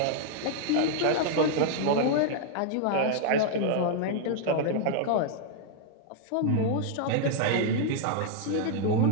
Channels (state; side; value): different; both; correlation 0.00